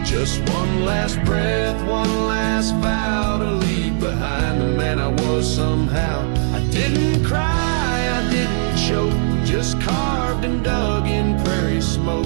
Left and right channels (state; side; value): silent; left; digital silence